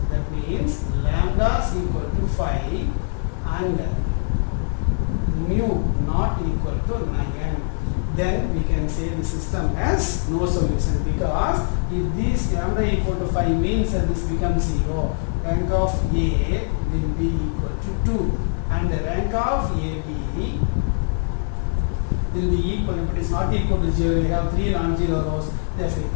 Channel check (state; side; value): silent; right; 64 dB below the other